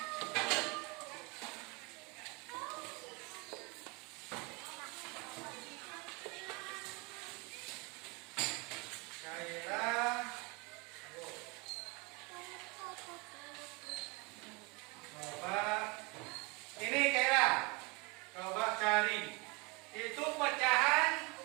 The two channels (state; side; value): quieter; left; 28.7 dB